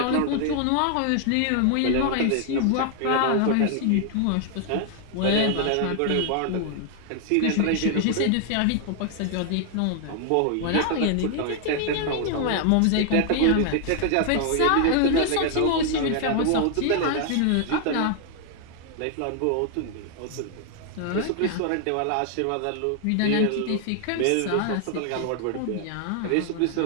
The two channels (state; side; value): different; both; correlation 0.00